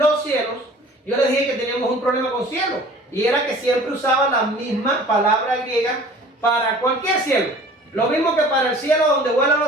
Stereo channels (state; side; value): normal; both; correlation 0.47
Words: cielos, yo les dije que teníamos un problema con cielo, y era que siempre usaba la misma palabra griega para cualquier cielo. Lo mismo que para el cielo donde vuelan